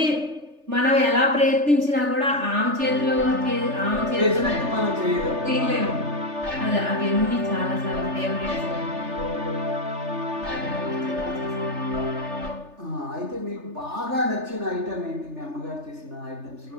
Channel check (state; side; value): late; left; 3.4 ms